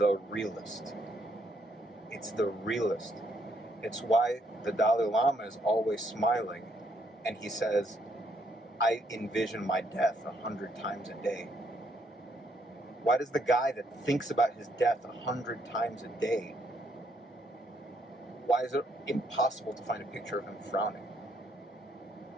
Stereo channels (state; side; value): normal; both; correlation 0.72